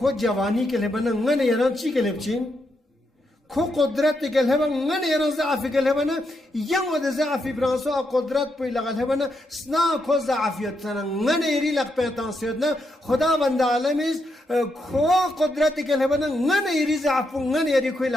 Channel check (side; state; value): both; normal; correlation 0.81